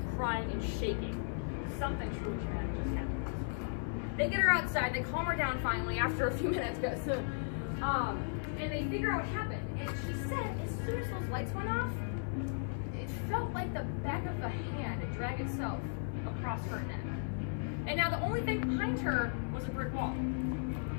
crying, and shaking. Something truly traumatic just happened. They get her outside, they calm her down finally after a few minutes, and they figure out what happened. And she said, as soon as those lights went off, it felt like the back of the hand had dragged itself across her neck. And now the only thing behind her was a brick wall.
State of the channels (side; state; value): right; silent; digital silence